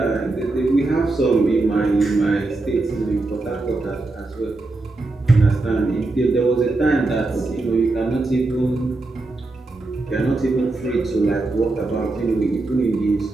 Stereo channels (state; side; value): quieter; left; 3.1 dB